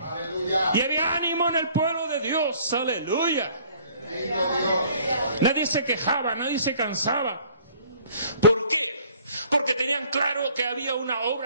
Y había ánimo en el pueblo de Dios, aleluya. Nadie se quejaba, nadie se cansaba. ¿Por qué? Porque tenían claro que había una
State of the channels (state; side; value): inverted; both; correlation -0.56